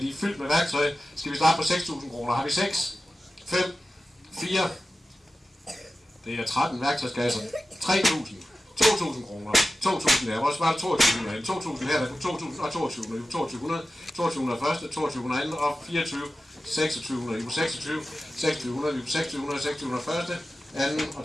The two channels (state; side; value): normal; both; correlation 0.94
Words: er fyldt med værktøj. Skal vi starte på 6.000 kroner? Har vi 6, 5, 4, det er 13 værktøjskasser, 3.000, 2.000 kroner, 2.000 der, hvor sparer 2.000 her, 2.000 her, der er 2.000 og 2200, 2.200, 2.200 første, 2.200 anden og 24, 2600, 26, 2600, 2600, 600 første, anden